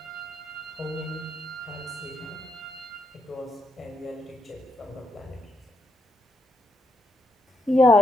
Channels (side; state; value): both; normal; correlation 0.79